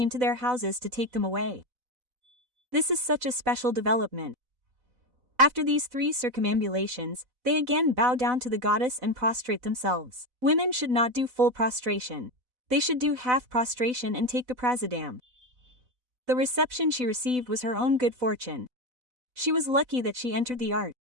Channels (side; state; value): left; late; 4.0 ms